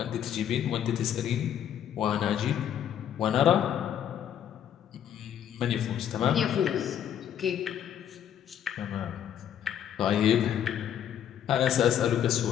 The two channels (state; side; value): quieter; right; 9.7 dB